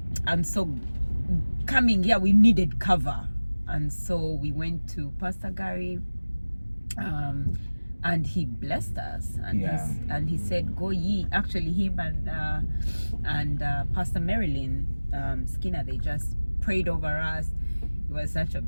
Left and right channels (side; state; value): both; inverted; correlation -1.00